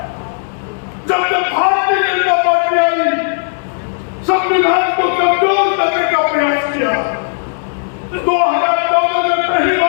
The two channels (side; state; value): right; silent; digital silence